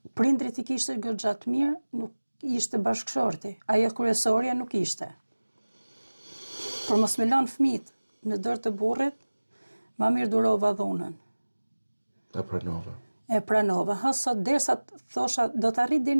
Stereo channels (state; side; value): inverted; both; correlation -1.00